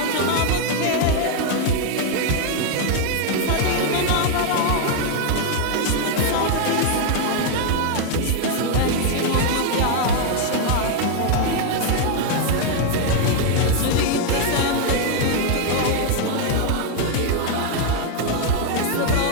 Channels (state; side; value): different; both; correlation 0.00